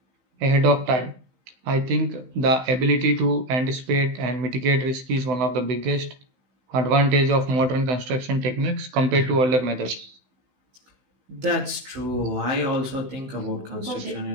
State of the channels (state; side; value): late; left; 16 ms